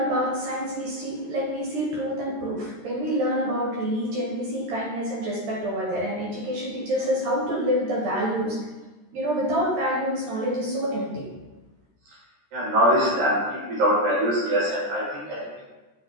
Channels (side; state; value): left; late; 13 ms